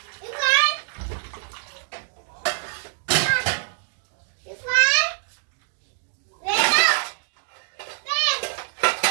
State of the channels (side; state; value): left; silent; digital silence